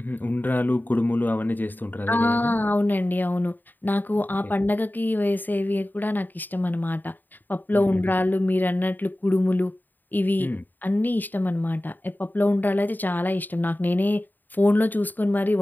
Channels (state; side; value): late; right; 0.089 ms